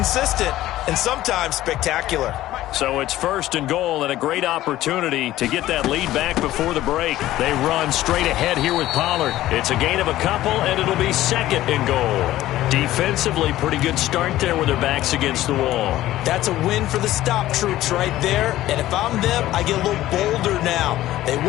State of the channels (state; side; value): quieter; right; 14.9 dB